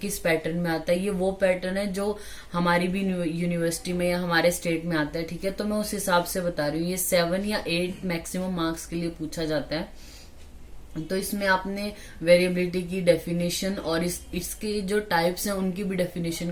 पैटर्न में आता है, ये वो पैटर्न है जो हमारी भी यूनिवर्सिटी में या हमारे स्टेट में आता है। ठीक है, तो मैं उस हिसाब से बता रही हूँ। ये 7 या 8 मैक्सिमम मार्क्स के लिए पूछा जाता है। तो इसमें आपने वेरिएबिलिटी की डेफिनेशन और इसके जो टाइप्स हैं उनकी भी डेफिनेशन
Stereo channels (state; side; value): identical; both; correlation 1.00